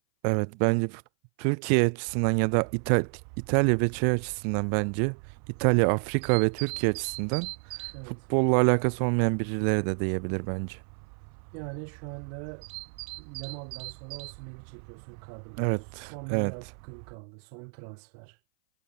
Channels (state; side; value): silent; left; 58 dB below the other